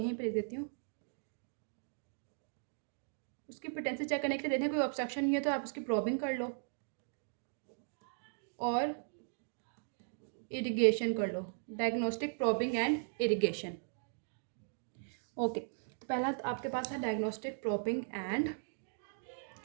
पर लिख देती हूँ, उसकी पोटेंसी चेक करने के लिए देखें कोई ऑब्स्ट्रक्शन नहीं है तो आप उसकी प्रॉबिंग कर लो और इरिगेशन कर लो, diagnostic probing and irrigation. Okay, तो पहला तो आपके पास है diagnostic probing and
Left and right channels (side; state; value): left; silent; digital silence